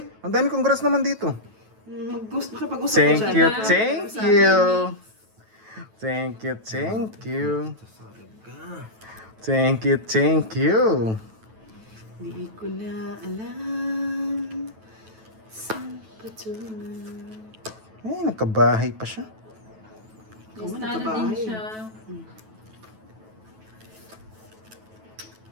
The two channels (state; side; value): late; left; 9.2 ms